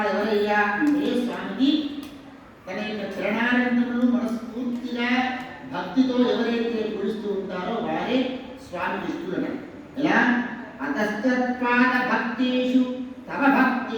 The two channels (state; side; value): identical; both; correlation 1.00